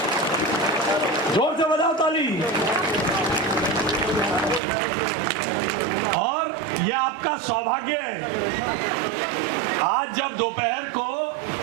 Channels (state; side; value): drops out; left; at 4.6 s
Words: जोर से बजाओ ताली। और ये आपका सौभाग्य है। आज जब दोपहर को